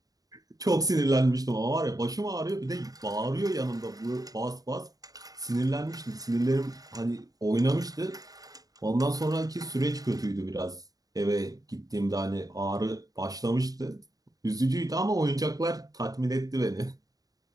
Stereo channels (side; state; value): left; late; 0.18 ms